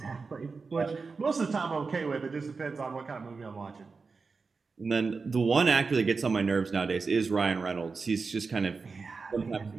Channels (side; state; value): left; quieter; 4.5 dB